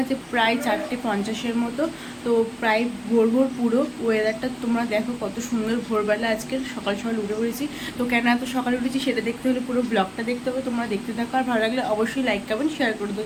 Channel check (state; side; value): identical; both; correlation 1.00